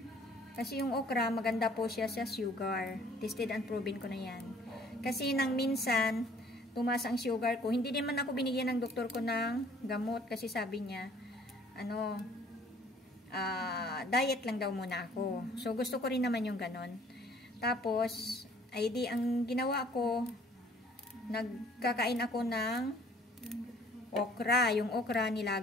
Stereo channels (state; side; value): normal; both; correlation 0.57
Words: Kasi yung okra, maganda po siya sa sugar. Tested and proven ko na yan. Kasi nang minsan, tumaas ang sugar ko. Hindi naman ako binigyan ng doktor ko ng gamot. Kasi sabi niya, diet lang daw muna ako. So, gusto ko rin naman yung ganon. Tapos, ay di, ang ginawa ko, nagkakain ako ng okra. Yung okra,